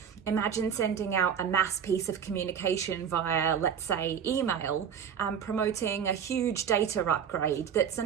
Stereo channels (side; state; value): left; quieter; 7.8 dB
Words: Imagine sending out a mass piece of communication via, let's say, email, promoting a huge data upgrade that's